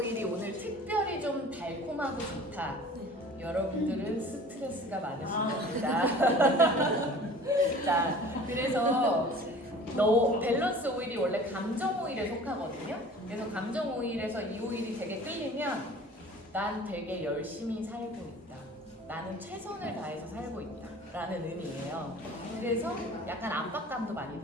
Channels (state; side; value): normal; both; correlation 0.44